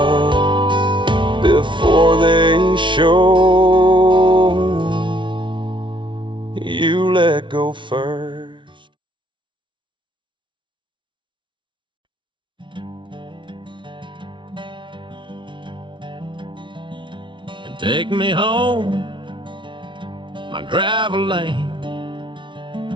before they show. You let go first. Take me home, my gravel lane.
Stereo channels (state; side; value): late; left; 0.24 ms